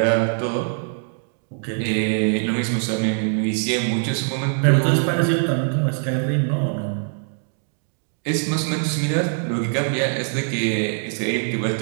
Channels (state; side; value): silent; left; 64 dB below the other